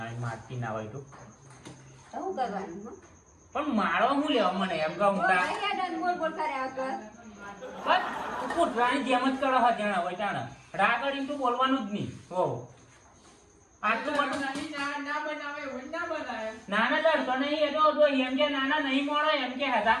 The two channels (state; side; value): identical; both; correlation 1.00